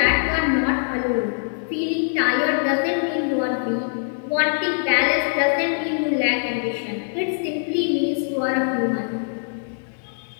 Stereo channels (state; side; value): silent; right; 64 dB below the other